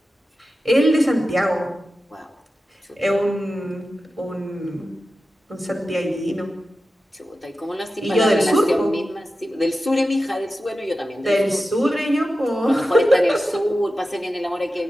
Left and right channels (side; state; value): both; normal; correlation 0.93